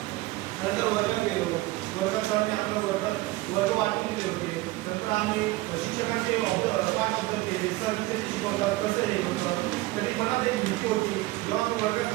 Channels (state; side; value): quieter; left; 19.5 dB